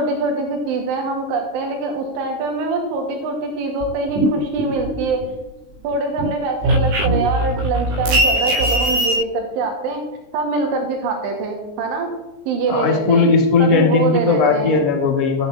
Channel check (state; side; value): late; left; 19 ms